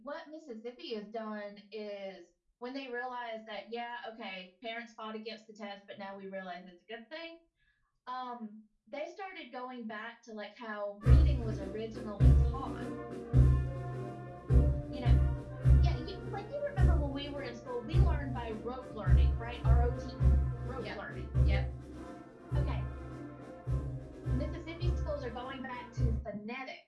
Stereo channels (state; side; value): identical; both; correlation 1.00